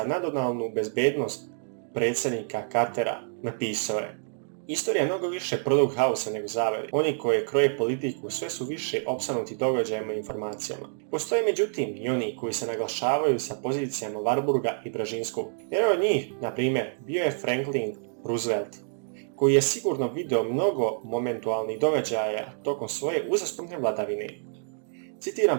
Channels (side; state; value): left; silent; digital silence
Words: nacionalnu bezbednost predsjednika Cartera. Napisao je: Istorija je mnogo više produkt haosa nego zavere. Oni koji kroje politiku sve su više opsanuti događajima i informacijama. Postoje međutim i oni koji se naglašavaju sa pozicijama Warburga i Brzezinskog. Jedan od njih, na primjer, bio je Franklin Roosevelt, koji je sigurno video mnogo momentualnih događaja tokom svoje uzastopne vladavine.